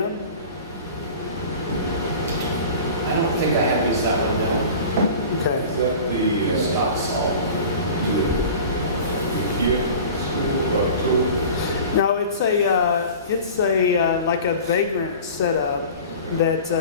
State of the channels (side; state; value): both; inverted; correlation -0.39